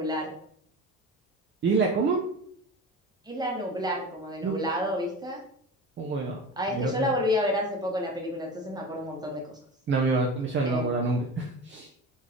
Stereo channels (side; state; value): both; normal; correlation 0.31